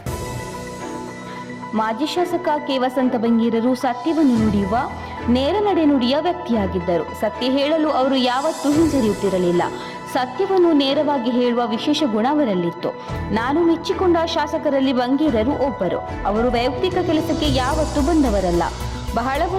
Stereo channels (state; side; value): identical; both; correlation 1.00